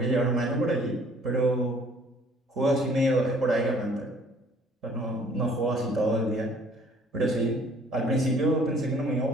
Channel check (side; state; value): both; normal; correlation 0.57